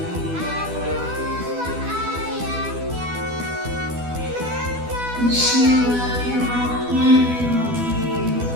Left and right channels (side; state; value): left; late; 12 ms